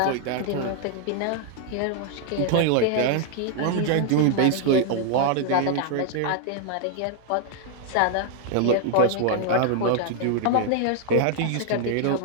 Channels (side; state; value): both; different; correlation 0.00